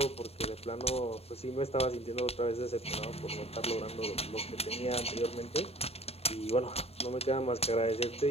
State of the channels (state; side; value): late; right; 0.29 ms